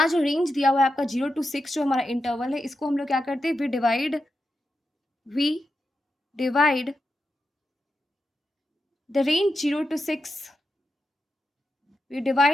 जो रेंज दिया हुआ है आपका 0 टू 6 जो हमारा इंटरवल है, इसको हम लोग क्या करते हैं, we divide the range 0 to 6, we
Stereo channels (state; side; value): normal; both; correlation 0.88